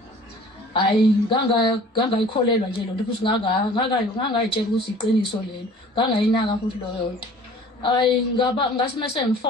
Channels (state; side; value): normal; both; correlation 0.48